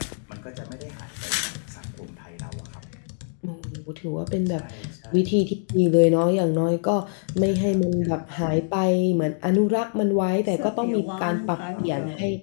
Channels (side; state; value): right; silent; digital silence